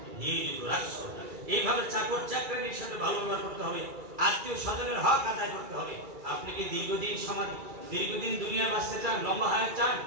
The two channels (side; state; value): left; late; 2.3 ms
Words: নিয়োজিত রাখছো। এইভাবে চাকর চাকরানির সাথে ভালো ব্যবহার করতে হবে, আত্মীয় স্বজনের হক আদায় করতে হবে। আপনি কি দীর্ঘদিন দুনিয়ায় বাঁচতে চান, লম্বা হায়াত চান?